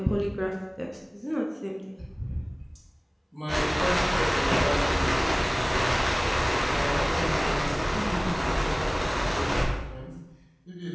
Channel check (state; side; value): identical; both; correlation 1.00